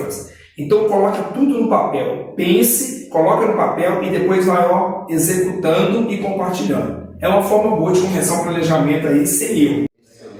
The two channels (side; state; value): both; identical; correlation 1.00